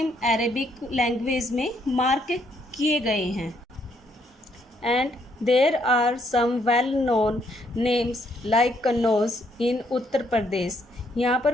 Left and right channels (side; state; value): both; normal; correlation 0.71